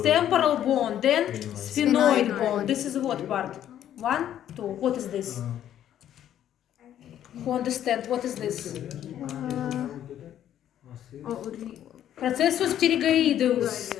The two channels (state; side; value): quieter; right; 10.9 dB